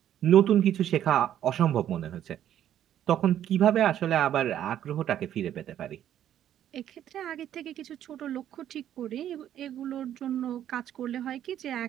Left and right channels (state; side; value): quieter; left; 10.9 dB